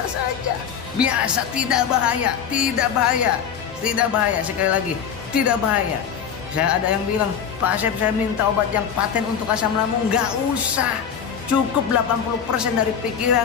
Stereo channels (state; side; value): quieter; right; 7.7 dB